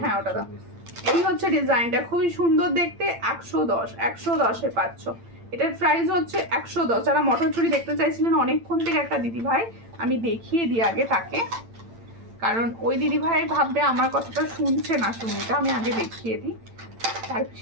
হ্যাঁ ওটা দাম। এই হচ্ছে ডিজাইনটা, খুবই সুন্দর দেখতে, 110 পাচ্ছ। এটার প্রাইস হচ্ছে 110। যারা মটর চুড়ি দেখতে চাইছিলেন অনেকক্ষণ থেকে একটা দিদি ভাই, আমি দেখিয়ে দিই আগে তাকে, কারণ ওই দিদি ভাই ভাববে আমার কথাটা শুনছে না, শুনিটা আমি আগে দেখিয়ে দিই।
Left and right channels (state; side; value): late; left; 8.9 ms